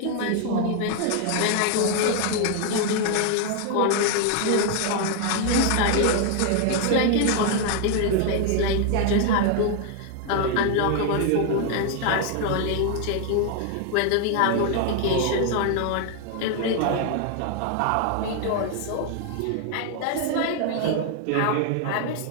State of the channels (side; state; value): both; different; correlation 0.00